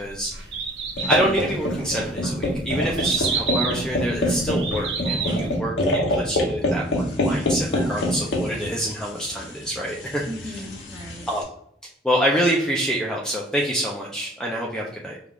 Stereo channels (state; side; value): normal; both; correlation 0.49